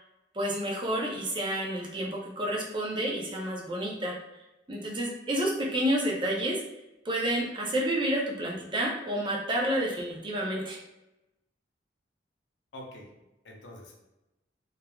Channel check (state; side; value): normal; both; correlation 0.41